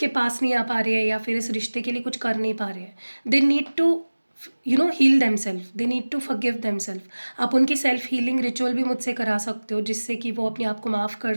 पास नहीं आ पा रहे हैं, या फिर इस रिश्ते के लिए कुछ कर नहीं पा रहे हैं। They need to heal them self, they need to forgive them self. आप उनकी सेल्फ हीलिंग रिचुअल भी मुझसे करा सकते हो, जिससे कि वो अपने आप को माफ़ कर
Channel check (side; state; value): both; inverted; correlation -1.00